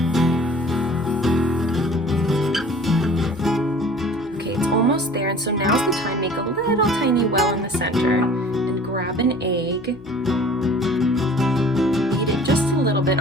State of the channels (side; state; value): both; normal; correlation 0.48